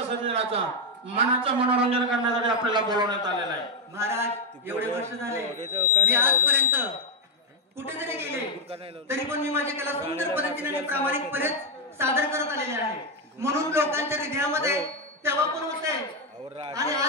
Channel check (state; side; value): normal; both; correlation 0.02